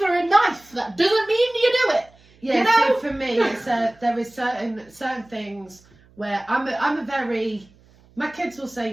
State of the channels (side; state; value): right; noise; hum, 29 dB below the sound